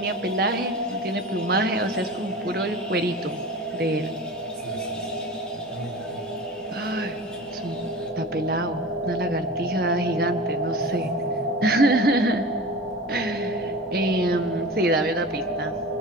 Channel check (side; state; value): both; normal; correlation 0.33